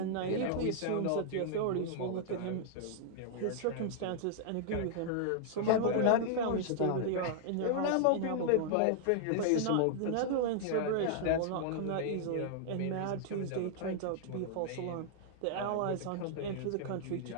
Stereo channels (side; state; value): both; different; correlation -0.01